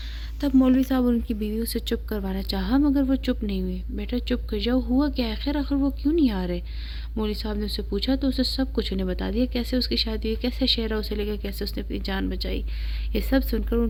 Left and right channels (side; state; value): both; identical; correlation 1.00